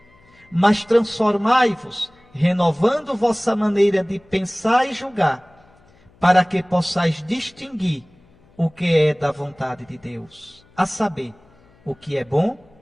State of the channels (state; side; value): noise; left; hum, 30 dB below the sound